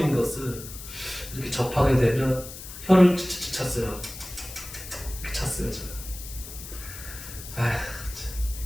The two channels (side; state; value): left; noise; hiss, 12 dB below the sound